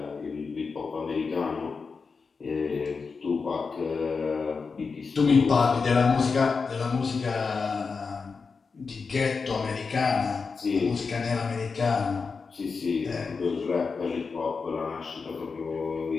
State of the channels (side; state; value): right; quieter; 4.9 dB